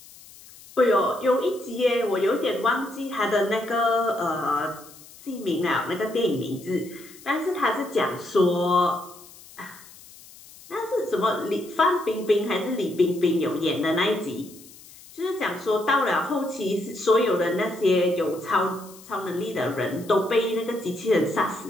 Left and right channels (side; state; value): left; noise; hiss, 21 dB below the sound